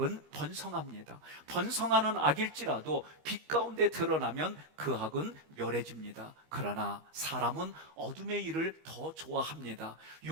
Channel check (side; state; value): left; late; 27 ms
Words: 번성합니다. 번성하는 악일지라도 빛 가운데 드러나면 그 악은 멸해집니다. 그러나 사람은 어둠의 일을 더 좋아합니다.